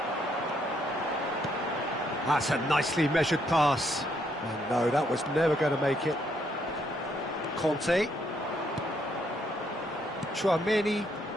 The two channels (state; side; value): normal; both; correlation 0.73